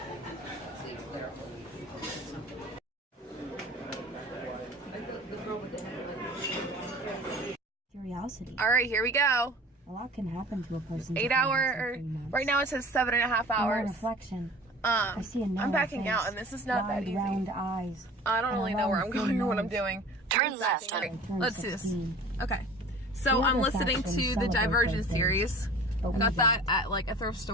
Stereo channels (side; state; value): both; normal; correlation 0.43